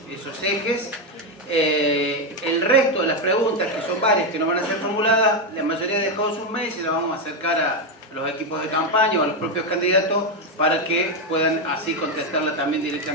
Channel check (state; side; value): normal; both; correlation 0.07